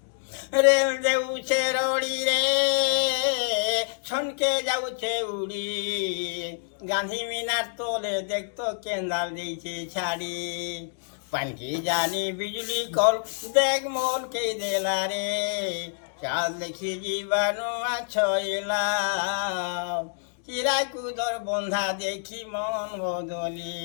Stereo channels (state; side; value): silent; right; digital silence